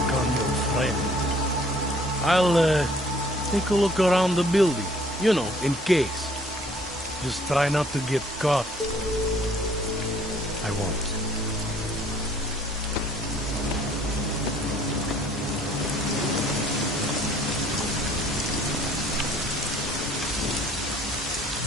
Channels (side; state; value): both; normal; correlation 0.58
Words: on your friend. I'll, take a look around the building. You know, in case. Just try not to get caught. I won't.